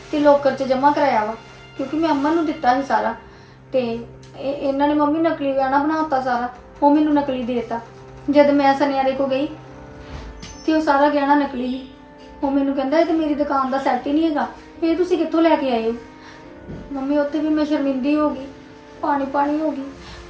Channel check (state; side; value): identical; both; correlation 1.00